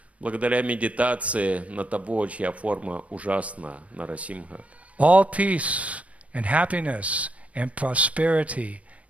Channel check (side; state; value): left; late; 0.065 ms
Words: Благодаря медитации на того, чья форма ужасна, Нарасимха, all peace and happiness and prosperity